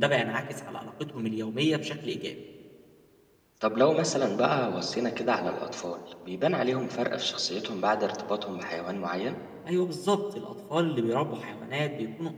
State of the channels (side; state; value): both; identical; correlation 1.00